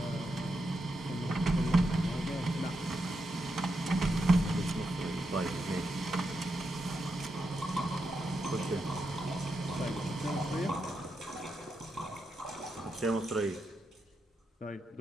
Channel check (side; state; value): both; normal; correlation 0.85